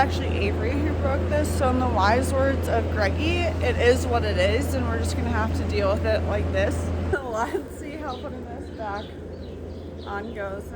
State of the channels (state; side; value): identical; both; correlation 1.00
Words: Avery who broke this, so in the wise words of Greggy, it is what it is, and we're just gonna have to deal with it like this. Let's see how putting this back on goes